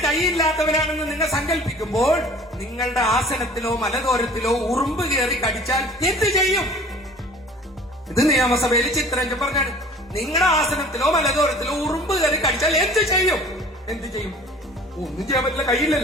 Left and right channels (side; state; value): both; normal; correlation 0.47